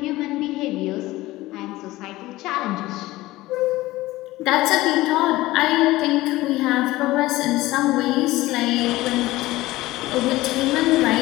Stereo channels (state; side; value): quieter; right; 18.1 dB